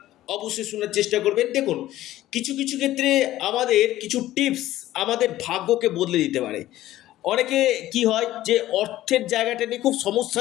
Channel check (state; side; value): quieter; right; 14.7 dB